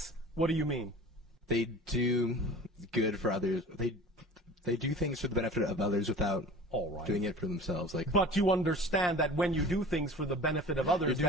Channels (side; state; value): both; normal; correlation 0.41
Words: what do you mean? They do good for others. They do things for the benefit of others without doing it for themselves. But you understand that when you do things for the benefit of others,